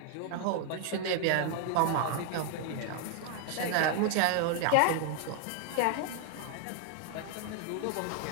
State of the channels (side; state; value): both; different; correlation 0.00